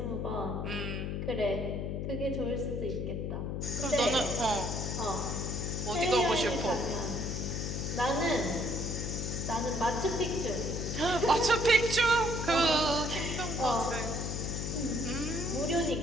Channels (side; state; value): left; noise; hum, 3 dB below the sound